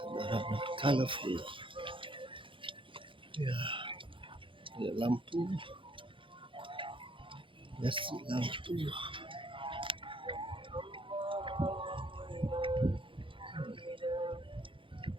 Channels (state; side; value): late; left; 0.25 ms